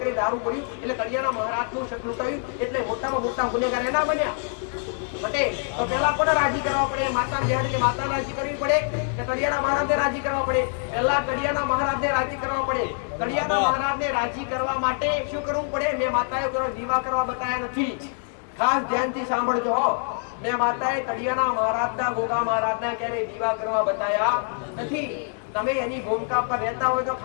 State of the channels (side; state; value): right; silent; 62 dB below the other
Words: કરી દારૂ પડ્યું, એટલે તળિયાના મહારાજનું શક લૂંટાયું, એટલે મોટામાં મોટા ગુનેગાર એના બન્યા. પટેલ તો પહેલા કોને રાજી કરવા પડે? માતા બેહાડીને માતા રાજી કરવી પડે કે તળિયાના મહારાજને રાજી કરવા પડે? પહેલા તળિયાના મહારાજને રાજી કરવા પડે. તળિયાના મહારાજને રાજી કરવા માટે શું કરવું પડે? મેં માતાએ દીવા કરવા બતાવ્યા નથી, ખાસ ધ્યાનથી સાંભળજો. મેં માતાએ તળિયાના મહારાજના, ગોગા મહારાજના ક્યારે દીવા કરવા બતાવ્યા નથી. તમે એની ભૂમિકા પર રહેતા હોય તો